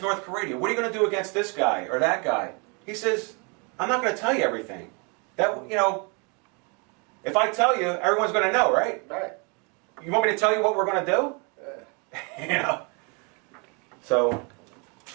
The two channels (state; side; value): quieter; left; 33.5 dB